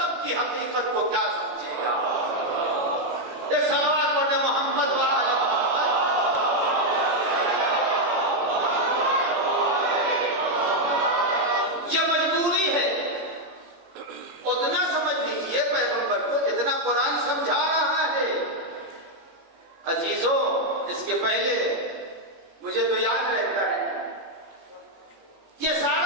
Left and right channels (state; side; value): late; left; 18 ms